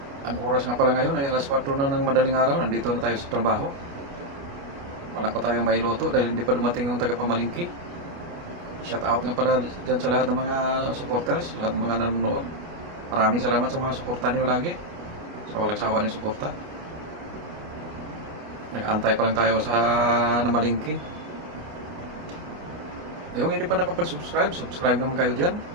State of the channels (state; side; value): late; left; 29 ms